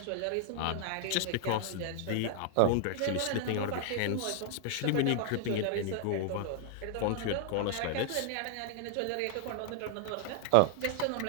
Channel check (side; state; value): both; different; correlation -0.01